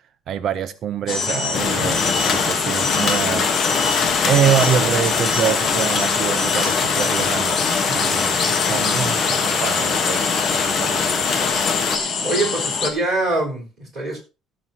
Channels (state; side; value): normal; both; correlation 0.58